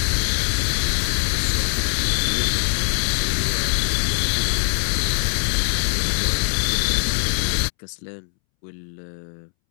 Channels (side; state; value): right; silent; 64 dB below the other